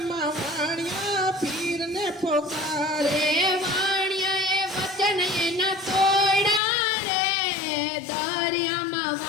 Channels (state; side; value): drops out; right; at 6.6 s